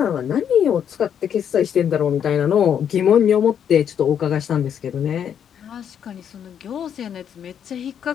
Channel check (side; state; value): right; quieter; 8.6 dB